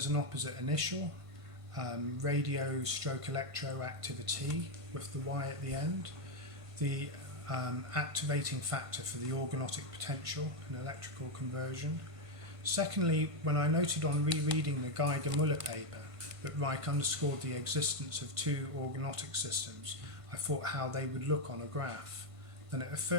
an opposite initial, radio/electro activity with the Y at the end, the activating factor for the organotic potential and electrical conversion. Secondly, when I noted on rereading the Geiger-Müller paper that Ryk underscored the existence of 2 organotic systems, I thought how they would look on a graph. Then it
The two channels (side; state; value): left; late; 1.5 ms